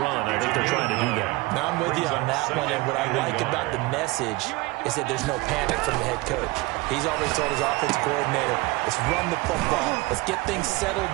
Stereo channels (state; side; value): quieter; left; 22.8 dB